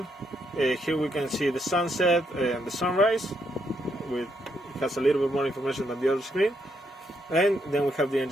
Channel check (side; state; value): both; normal; correlation 0.77